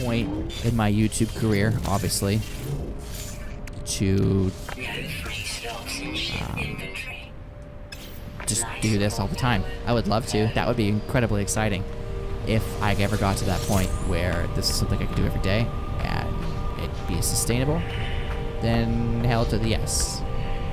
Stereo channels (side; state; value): both; identical; correlation 1.00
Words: point in my YouTube career, obviously, to just do this all the time. I would love to. That would be incredibly exciting. If I ever got to that point where this is something I could do every day and it'd be sustainable, then hell to the yes.